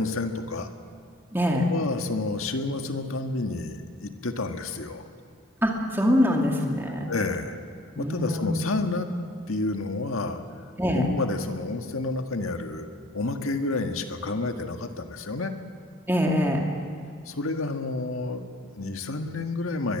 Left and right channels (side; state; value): both; normal; correlation 0.54